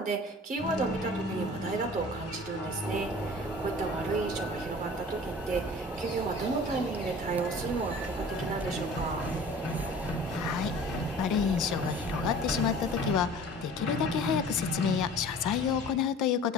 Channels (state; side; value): normal; both; correlation 0.44